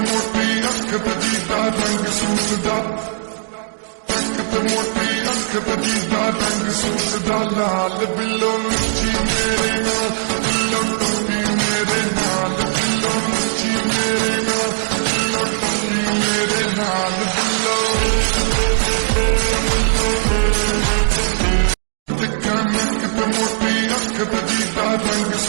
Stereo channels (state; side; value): silent; left; digital silence